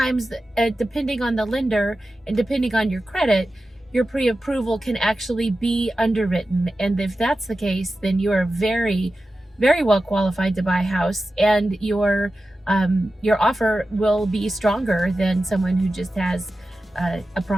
depending on the lender and depending on your credit, your pre-approval can actually be underwritten. And if that's the case, then you are very well qualified to buy a house, and your offer will be stronger than someone who just has a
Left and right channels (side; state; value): both; normal; correlation 0.93